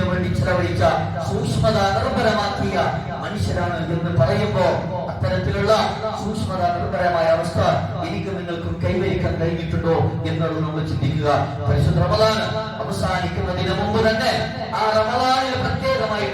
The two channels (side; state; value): both; identical; correlation 1.00